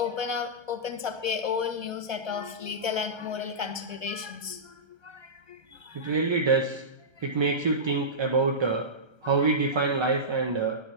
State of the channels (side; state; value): left; late; 1.3 ms